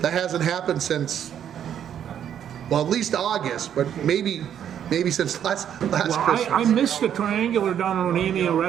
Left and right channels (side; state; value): left; quieter; 9.4 dB